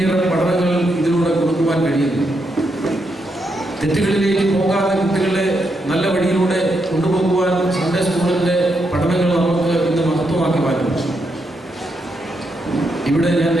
പഠനങ്ങൾ ഇതിലൂടെ കൊടുക്കുവാൻ കഴിയുന്നു. തെറ്റുകളിലേക്ക് പോകാതെ കുട്ടികളെ നല്ല വഴിയിലൂടെ കൊണ്ടുപോകുവാൻ സൺഡേ സ്കൂളിൻ്റെ പഠനങ്ങൾ നമുക്ക് ഇന്ന് മഹത്വമാക്കി മാറ്റുന്നു. ഇവിടെ ഞാൻ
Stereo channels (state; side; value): normal; both; correlation 0.81